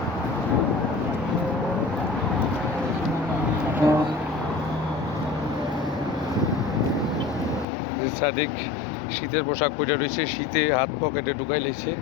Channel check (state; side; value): drops out; right; at 7.7 s